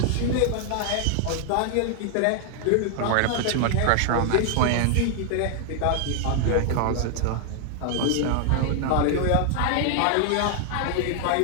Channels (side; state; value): both; different; correlation 0.00